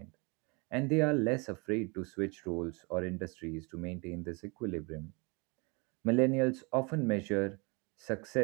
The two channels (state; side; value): quieter; left; 30.0 dB